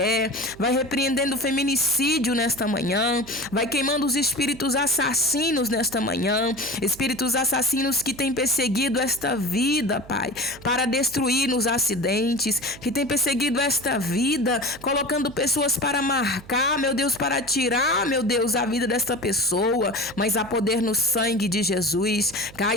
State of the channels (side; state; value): right; noise; hum, 20 dB below the sound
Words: vai repreendendo o feminicídio nesta manhã, vai queimando os espíritos assassinos nesta manhã, espíritos assassinos que têm perseguido esta vida, Pai, para destruir nos acidentes, que têm perseguido esta vida, colocando pessoas para marcar, meu Deus, para tirar, meu Deus, a vida desta pessoa, mas há poder no sangue de Jesus.